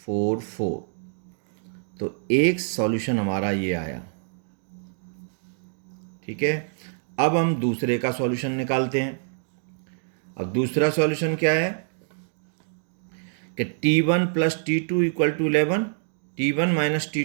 तो एक सॉल्यूशन हमारा ये आया, ठीक है। अब हम दूसरे का सॉल्यूशन निकालते हैं। अब दूसरा सॉल्यूशन क्या है कि t1 plus t2 equal to 11, t1 minus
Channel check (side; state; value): left; silent; digital silence